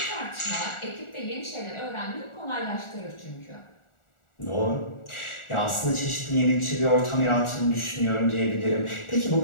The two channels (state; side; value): late; right; 1.4 ms